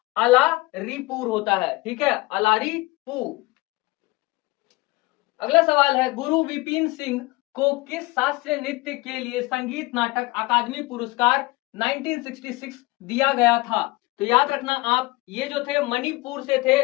अलारीपुर होता है। ठीक है, अलारीपुर। अगला सवाल है, गुरु विपिन सिंह को किस शास्त्रीय नृत्य के लिए संगीत नाटक अकादमी पुरस्कार 1966 दिया गया था। तो याद रखना आप, ये जो थे मणिपुर से थे,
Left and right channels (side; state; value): right; quieter; 22.2 dB